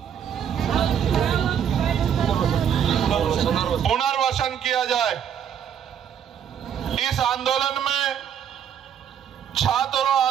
पुनर्वसन किया जाए। इस आंदोलन में छात्रों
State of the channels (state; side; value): quieter; left; 8.7 dB